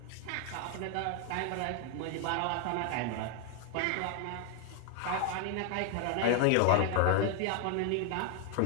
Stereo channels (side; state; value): both; different; correlation 0.00